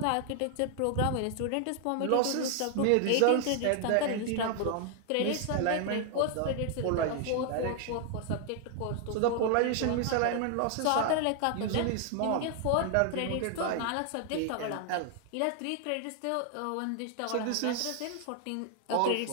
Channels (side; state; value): both; different; correlation 0.00